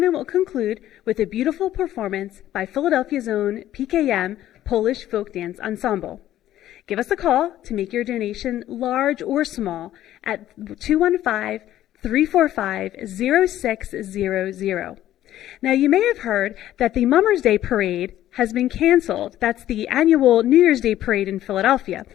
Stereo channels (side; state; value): right; quieter; 13.0 dB